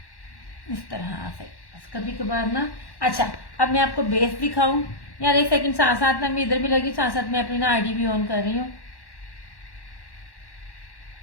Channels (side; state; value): right; late; 1.1 ms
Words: इस तरह से बस कभी कभार ना। अच्छा, अब मैं आपको बेस दिखाऊं यार। एक सेकंड, साथ साथ ना मैं इधर भी लगी, साथ साथ मैं अपनी ना आईडी भी ऑन कर रही हूँ।